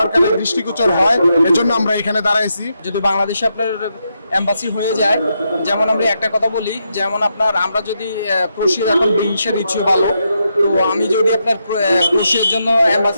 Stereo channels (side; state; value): both; inverted; correlation -0.82